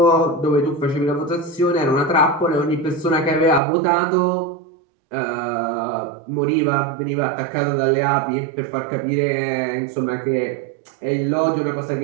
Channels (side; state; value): left; drops out; at 3.6 s